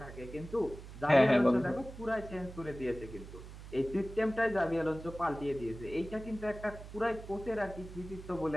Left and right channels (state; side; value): noise; right; hum, 14 dB below the sound